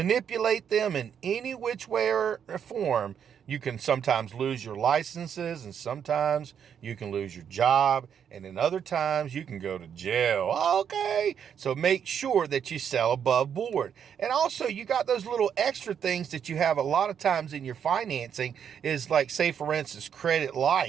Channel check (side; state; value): left; quieter; 8.1 dB